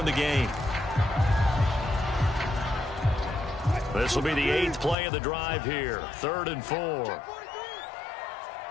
the game. This will be the 8th play of the drive here. 3rd and 4.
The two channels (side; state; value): right; drops out; at 5.0 s